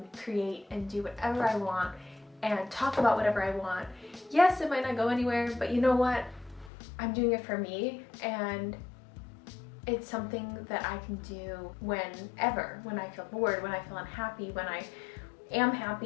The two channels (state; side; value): drops out; right; at 6.7 s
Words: create and do whatever I want and talk about whatever I want. Yes, it might not go anywhere, but you know what? I'm doing it for me, and it's something that I can do whenever, when I feel bored, when I feel unhappy, when I am